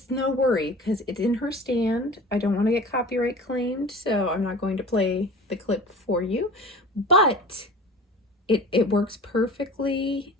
no worry because it's in her stand. I don't want to get copyright claimed, so I'm not going to play the clip for you, but it works perfectly.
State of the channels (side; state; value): both; normal; correlation 0.39